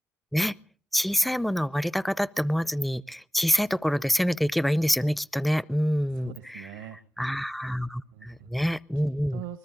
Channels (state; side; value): normal; both; correlation 0.98